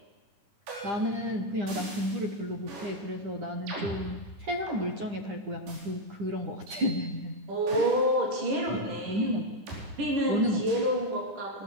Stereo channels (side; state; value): left; late; 9.9 ms